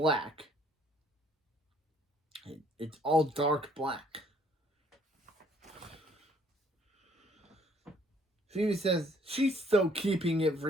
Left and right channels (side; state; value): both; normal; correlation 0.62